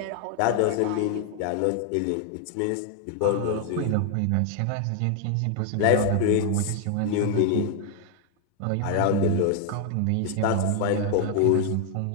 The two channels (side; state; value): both; different; correlation 0.00